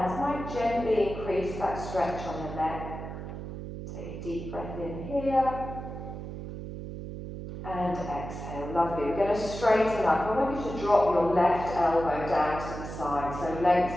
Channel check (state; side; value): noise; right; hum, 8 dB below the sound